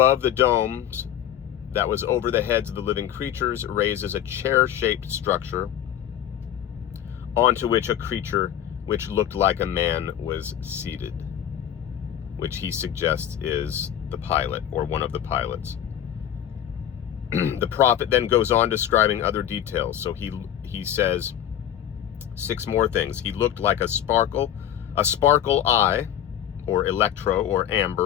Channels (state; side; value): quieter; right; 10.5 dB